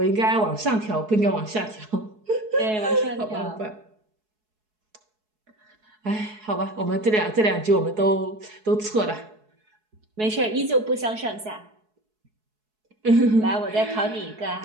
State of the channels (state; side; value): late; left; 4.7 ms